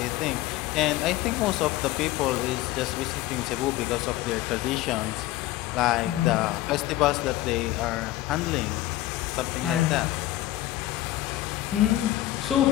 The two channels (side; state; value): right; quieter; 15.7 dB